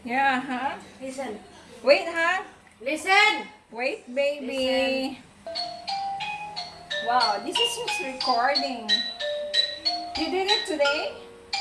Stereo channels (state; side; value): identical; both; correlation 1.00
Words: Yeah, huh? Listen. Wait, huh? Listen. Wait, baby. Wow, this is just recording. You did it today?